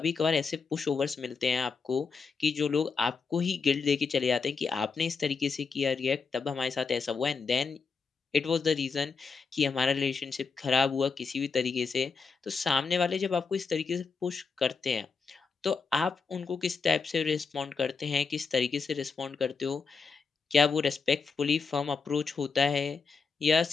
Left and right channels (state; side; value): quieter; right; 5.1 dB